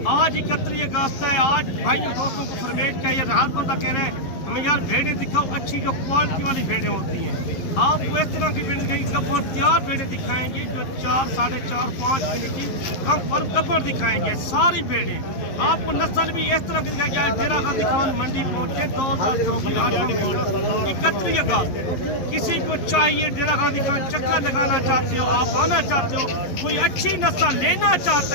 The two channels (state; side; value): late; right; 11 ms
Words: आज 31 अगस्त है। आज भाइयों दोस्तों को फरमेट क्या ये हर बंदा कह रहे हैं हमें यार भेड़ें दिखाओ, अच्छी जो क्वालिटी वाली भेड़ें होती हैं। आपको इस तरह की भेड़ें दिखाएंगे, गब्बर तैयार भेड़ें दिखाएंगे जो 4, 4.5, 5 महीने की कम पर गब्बर दिखाएंगे। सारी भेड़ें आपको नस्ल भी इस तरह की दिखाएंगे। डेरा गाजी खान मंडी पहुंचे 2024 31 अगस्त। किसी को चाहिए डेरा गाजी खान चक्कर लगाना चाहते हो, आप आना चाहते हो, कोई अच्छी नस्ल लेना